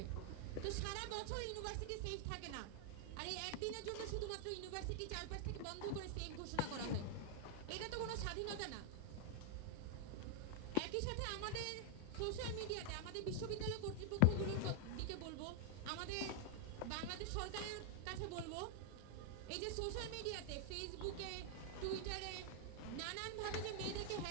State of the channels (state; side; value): different; both; correlation 0.00